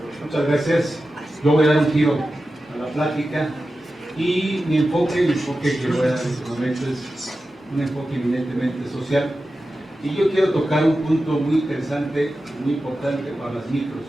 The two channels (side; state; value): both; normal; correlation 0.93